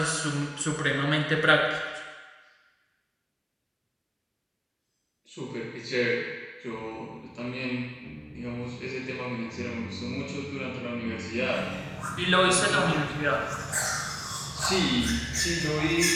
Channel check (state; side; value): identical; both; correlation 1.00